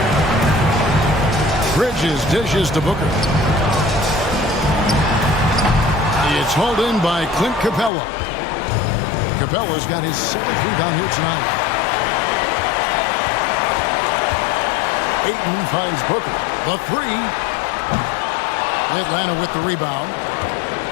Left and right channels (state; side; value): drops out; right; at 7.9 s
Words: Bridges dishes to Booker. It's hauled in by Clint Capella. Capella's got his 7th rebound here tonight. Ayton finds Booker. The 3. Atlanta with the rebound.